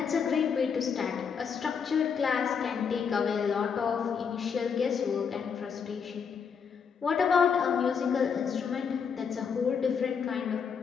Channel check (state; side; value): quieter; right; 6.5 dB